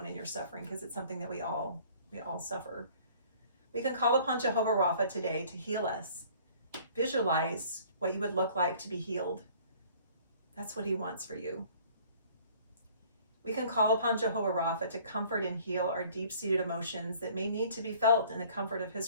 in your suffering because it's something that we all suffer. We can call upon Jehovah Rapha today to heal us. Visualize what you would look like to be healed. That's what he wants for you. We can call upon Jehovah Rapha to comfort and heal our deep-seated emotions that may need to be felt in the comfort of his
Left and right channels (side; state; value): both; inverted; correlation -0.54